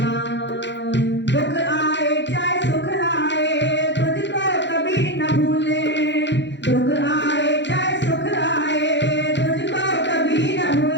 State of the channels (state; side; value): late; right; 0.52 ms